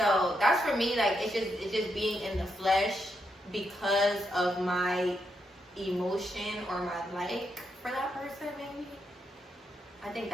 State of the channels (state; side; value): normal; both; correlation 0.81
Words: that's for me, like it's just being in the flesh because of my emotion or my like for that person, maybe. I think